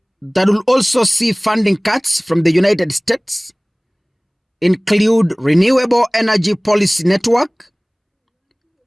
that will also see funding cuts from the United States include Renewable Energy Policy Network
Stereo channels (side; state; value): both; identical; correlation 1.00